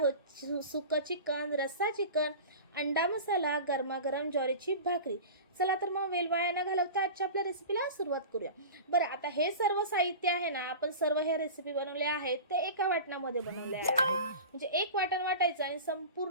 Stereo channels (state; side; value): inverted; both; correlation -0.33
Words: सुकं चिकन, रस्सा चिकन, अंडा मसाला, गरमागरम ज्वारीची भाकरी. चला तर मग वेळ वाया न घालवता आजच्या आपल्या रेसिपीला सुरुवात करूया. बरं, आता हे सर्व साहित्य आहे ना, आपण सर्व ह्या रेसिपी बनवले आहेत ते एका वाटणामध्ये बनवले आहेत. म्हणजे एक वाटण वाटायचं आणि